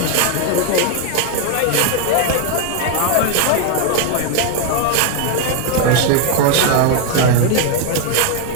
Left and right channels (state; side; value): different; both; correlation 0.01